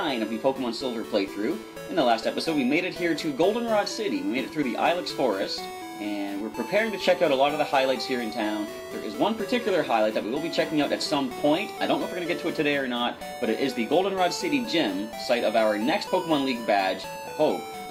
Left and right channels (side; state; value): both; identical; correlation 1.00